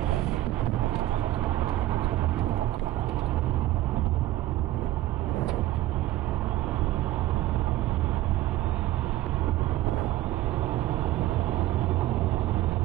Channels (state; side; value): quieter; left; 15.2 dB